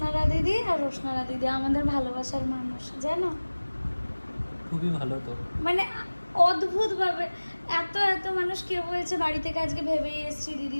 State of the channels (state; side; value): inverted; both; correlation -1.00